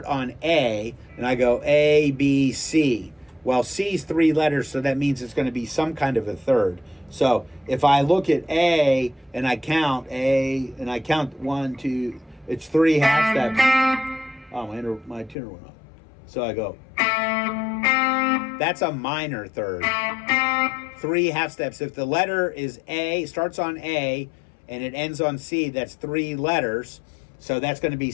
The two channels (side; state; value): right; drops out; at 15.4 s